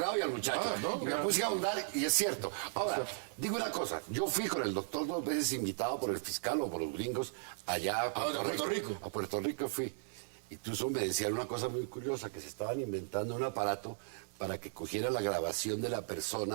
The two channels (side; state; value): left; silent; digital silence